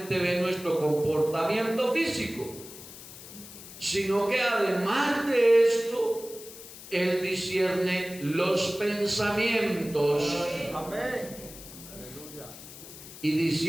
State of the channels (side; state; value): left; noise; hiss, 15 dB below the sound